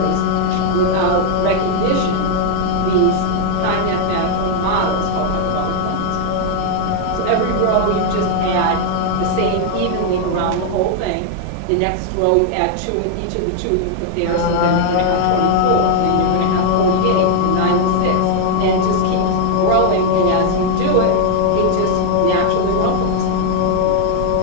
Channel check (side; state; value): both; different; correlation 0.00